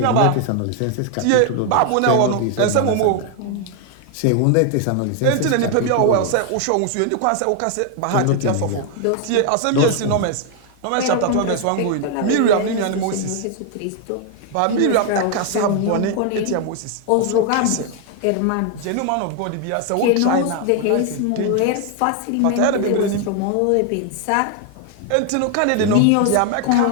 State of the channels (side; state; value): both; different; correlation 0.00